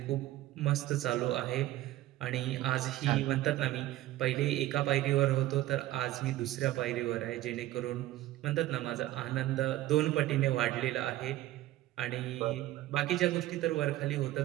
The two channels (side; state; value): left; quieter; 15.4 dB